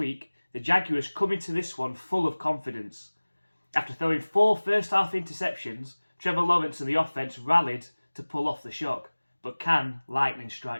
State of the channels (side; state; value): both; inverted; correlation -1.00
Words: the Jaguars come into this one full of confidence. After throwing 4 first-half interceptions, Trevor Lawrence and the offense rallied to pull off the shock, but can lightning